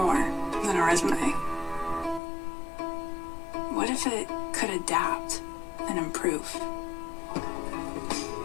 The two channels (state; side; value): drops out; right; at 2.2 s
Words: than a resume? What if it could adapt and improve?